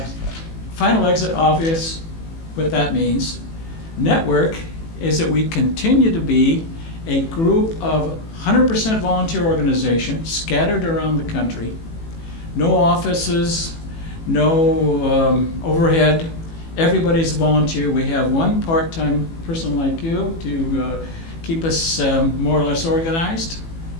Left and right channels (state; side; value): late; right; 18 ms